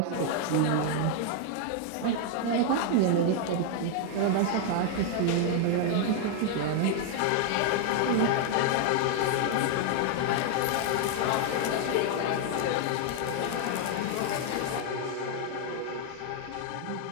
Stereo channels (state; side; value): different; both; correlation 0.00